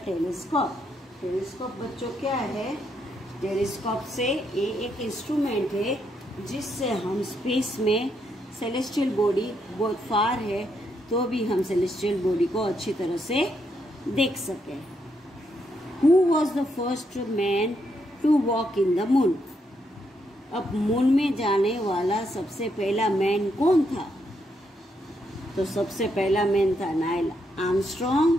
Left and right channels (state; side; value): normal; both; correlation 0.78